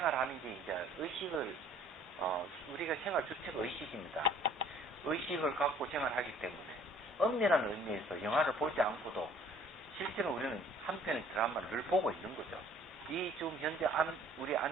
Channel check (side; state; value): both; normal; correlation 0.55